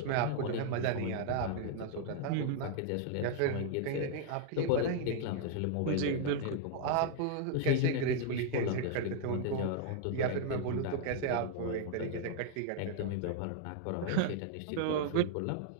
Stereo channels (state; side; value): different; both; correlation 0.00